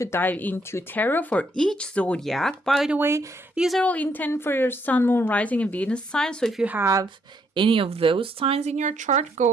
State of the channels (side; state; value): both; normal; correlation 0.73